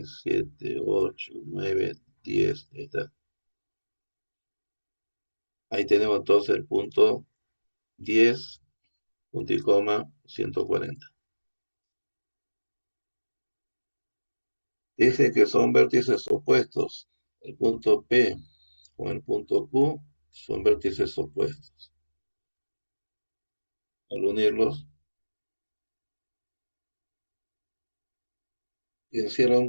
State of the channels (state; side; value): inverted; both; correlation -1.00